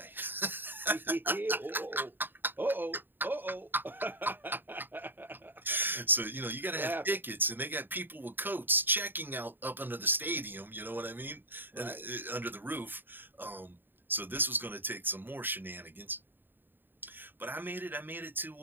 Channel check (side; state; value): left; late; 0.094 ms